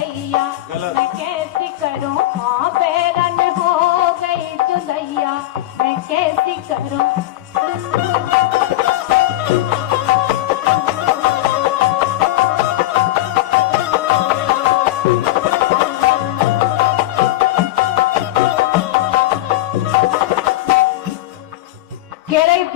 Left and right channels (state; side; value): quieter; right; 16.1 dB